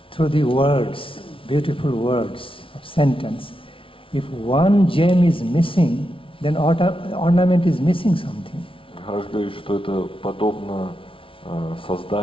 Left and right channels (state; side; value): late; right; 0.25 ms